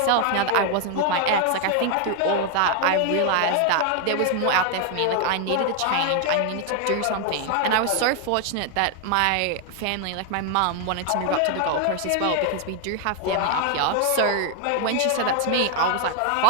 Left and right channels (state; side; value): different; both; correlation 0.00